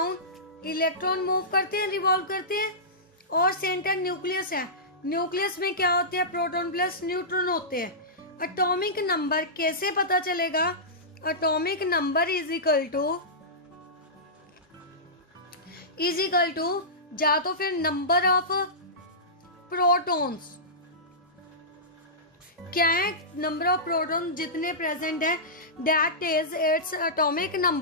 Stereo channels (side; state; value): both; normal; correlation -0.17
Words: इलेक्ट्रॉन मूव करते हैं, रिवॉल्व करते हैं, और सेंटर न्यूक्लियस है। न्यूक्लियस में क्या होते हैं, प्रोटॉन प्लस न्यूट्रॉन होते हैं। एटॉमिक नंबर कैसे पता चलेगा, atomic number is equal to या तो फिर नंबर ऑफ प्रोटॉन्स, क्या है, नंबर ऑफ प्रोटॉन जितने प्रेजेंट है, that is its atomic